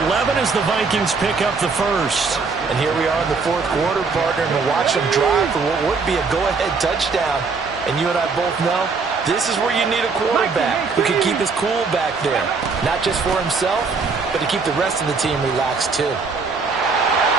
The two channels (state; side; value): quieter; left; 4.6 dB